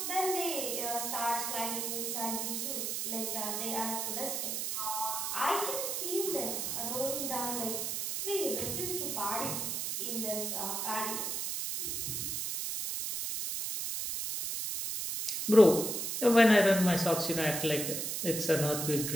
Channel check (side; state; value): right; noise; hiss, 2 dB below the sound